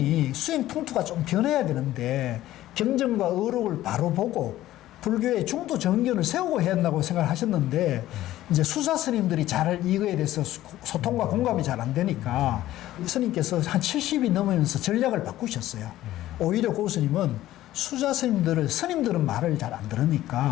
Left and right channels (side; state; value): right; quieter; 14.6 dB